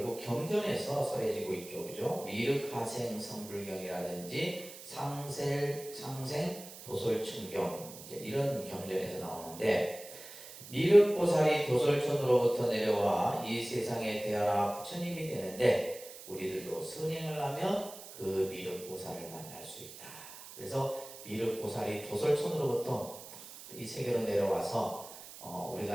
경전에서 써해지고 있죠, 그죠? 미륵하생 성불경이라든지 상생 도솔천경 이제 이런 경전에서 나오는데, 미륵보살이 도솔천으로부터 내려와 이 세상에 태어나 부처님이 되는데 우리들도 선행을 하면 그 미륵보살을 만날 수 있다. 그래서 미륵보살이 도솔천으로부터 이 세계로 내려와서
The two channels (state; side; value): noise; right; hiss, 15 dB below the sound